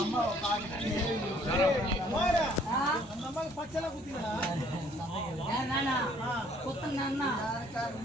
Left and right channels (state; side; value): normal; both; correlation 0.61